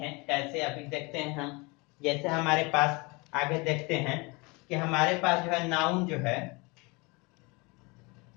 कैसे, अभी देखते हैं हम। जैसे हमारे पास आगे देखते हैं कि हमारे पास जो है नाउन जो है,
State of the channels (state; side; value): quieter; right; 27.1 dB